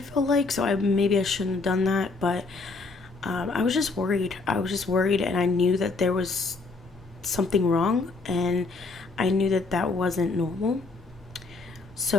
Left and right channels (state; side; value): quieter; right; 3.7 dB